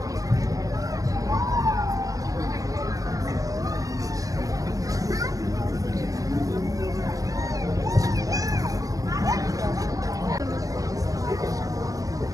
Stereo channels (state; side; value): late; left; 0.16 ms